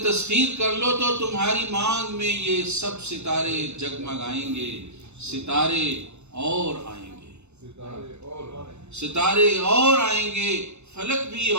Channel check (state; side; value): late; left; 0.81 ms